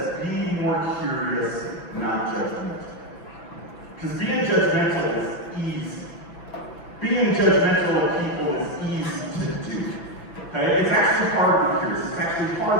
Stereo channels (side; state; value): right; late; 6.0 ms